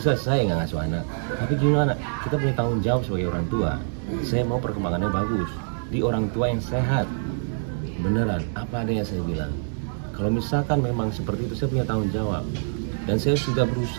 saya nggak ngasuh anak, tapi gimana? Kita punya tanggung jawab sebagai orang tua. Saya mau perkembangannya bagus di orang tua yang sehat, beneran apa adanya saya bilang. Kalau misalkan memang seperti itu, saya punya tanggung jawab. Dan saya sudah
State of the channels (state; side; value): silent; left; digital silence